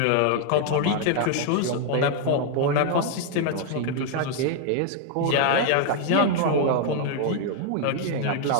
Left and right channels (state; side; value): different; both; correlation 0.00